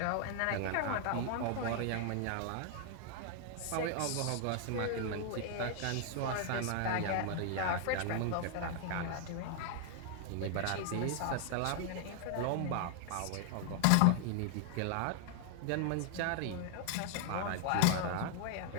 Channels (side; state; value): both; different; correlation 0.00